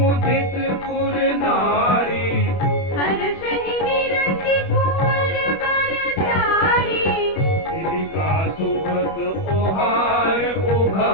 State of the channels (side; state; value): right; late; 31 ms